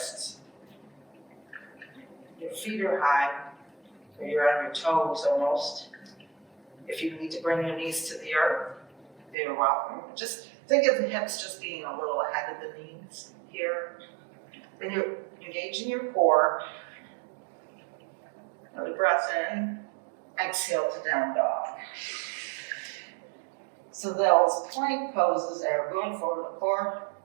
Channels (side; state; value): left; drops out; at 9.3 s